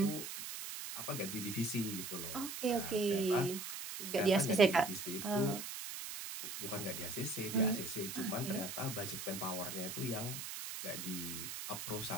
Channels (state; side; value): noise; right; hiss, 7 dB below the sound